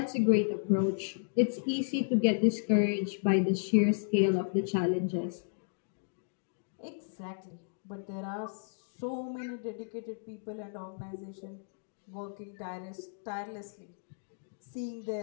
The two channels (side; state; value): right; silent; digital silence